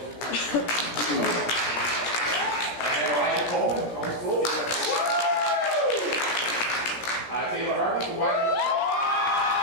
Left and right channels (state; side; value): late; right; 17 ms